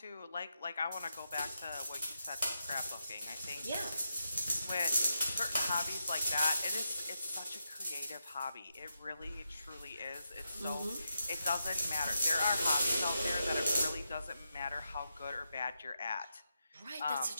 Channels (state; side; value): inverted; both; correlation -0.85